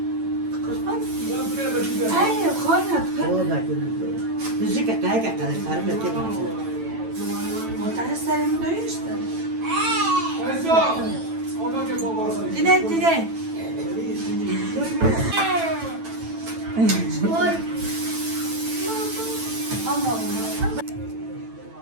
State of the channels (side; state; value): left; late; 9.0 ms